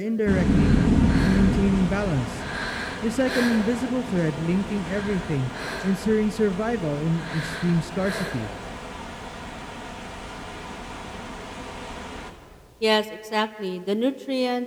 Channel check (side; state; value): both; identical; correlation 1.00